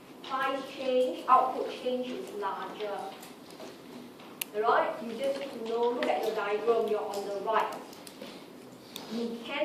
price change, output change is larger. Alright, you just need to know, look at your diagram, you're on the right. You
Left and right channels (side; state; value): both; identical; correlation 1.00